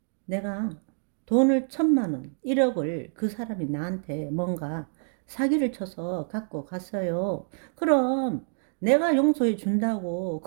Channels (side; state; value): left; silent; digital silence